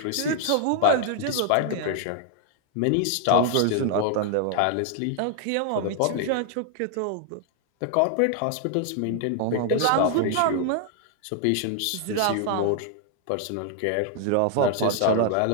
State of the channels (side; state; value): both; different; correlation 0.00